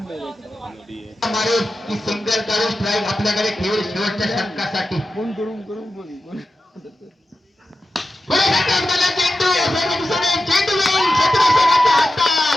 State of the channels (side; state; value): both; normal; correlation 0.92